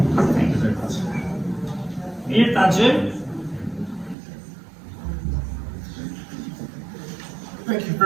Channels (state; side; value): drops out; left; at 4.2 s